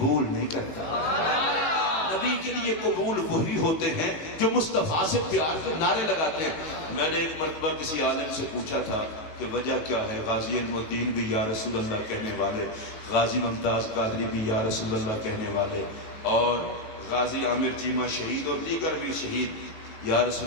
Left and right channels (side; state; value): right; late; 19 ms